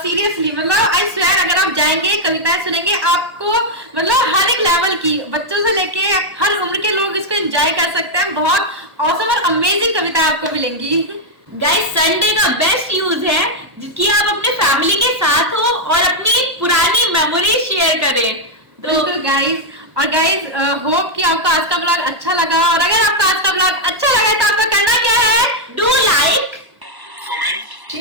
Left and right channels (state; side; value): late; left; 1.1 ms